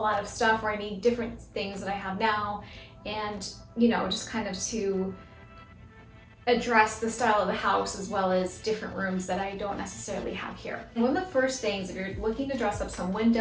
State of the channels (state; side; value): identical; both; correlation 1.00